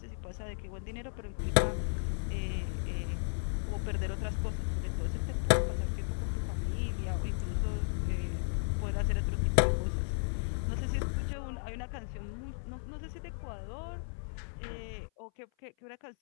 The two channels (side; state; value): right; silent; 55 dB below the other